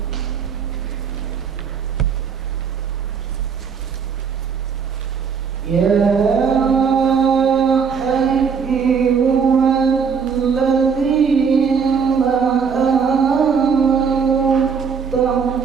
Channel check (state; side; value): quieter; left; 6.1 dB